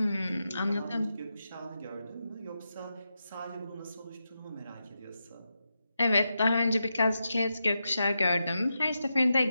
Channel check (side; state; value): both; inverted; correlation -0.88